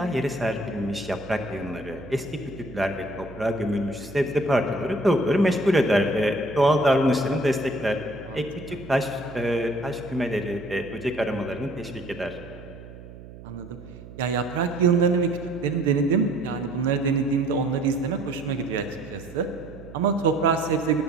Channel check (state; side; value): noise; right; hum, 16 dB below the sound